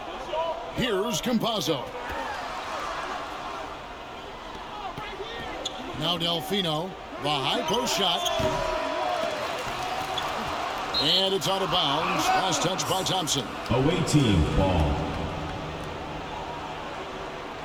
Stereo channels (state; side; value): identical; both; correlation 1.00